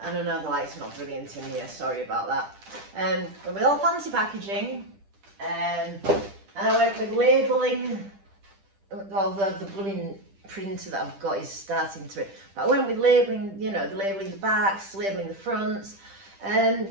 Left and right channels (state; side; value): late; left; 10 ms